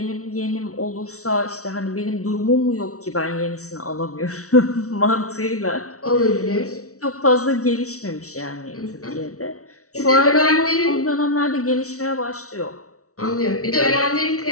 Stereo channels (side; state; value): right; late; 0.65 ms